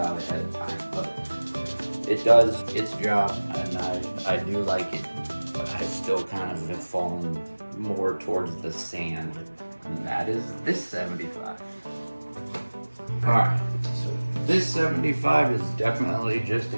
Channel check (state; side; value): inverted; both; correlation -1.00